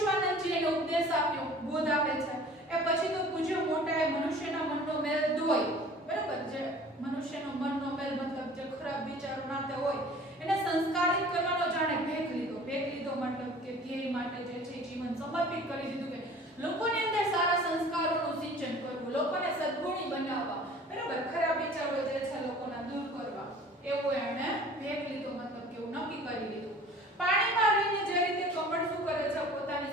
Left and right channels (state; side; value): normal; both; correlation 0.46